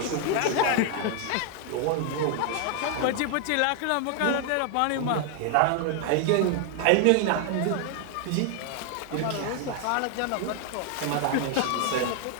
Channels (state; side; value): different; both; correlation 0.00